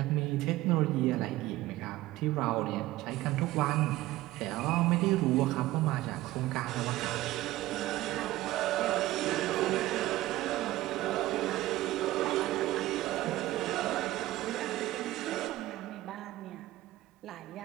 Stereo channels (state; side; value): quieter; left; 16.8 dB